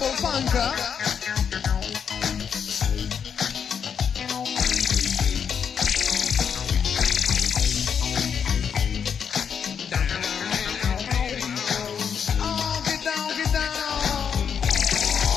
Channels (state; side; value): quieter; right; 7.3 dB